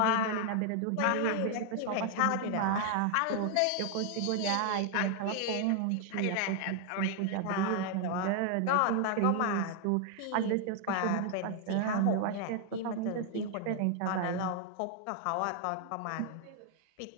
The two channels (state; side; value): different; both; correlation 0.00